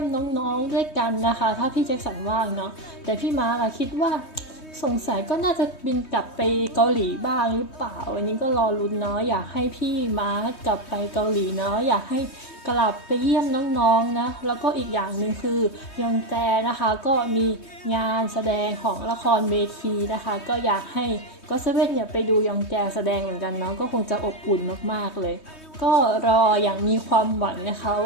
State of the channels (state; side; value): late; right; 3.2 ms